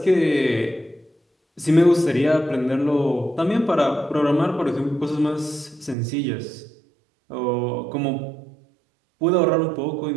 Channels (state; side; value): drops out; left; at 6.0 s